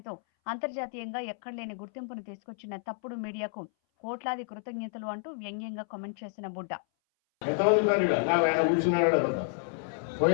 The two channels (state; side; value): silent; right; 58 dB below the other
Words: అంతర్జాతీయంగా ఎక్కడలేని గుర్తింపును తీసుకొచ్చిన తప్పుడు మీడియాకు కోట్లాది కృతజ్ఞతలు అంటూ వ్యంగ్యంగా కామెంట్ చేసిన బుడ్డ.